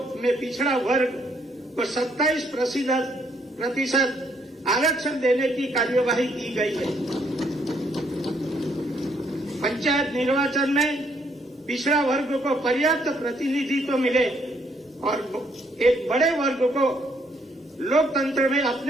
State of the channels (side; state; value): both; normal; correlation 0.70